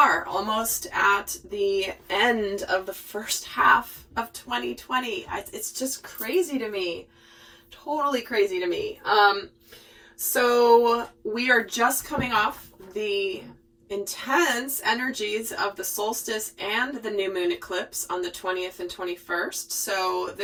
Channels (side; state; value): both; identical; correlation 1.00